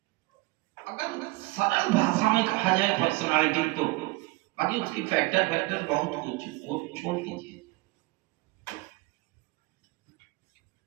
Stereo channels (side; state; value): left; quieter; 22.6 dB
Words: अगर सरल भाषा में कहा जाए पर्सनालिटी तो, बाकी उसकी फैक्टर फैक्टर बहुत कुछ, वो छोड़ दीजिए।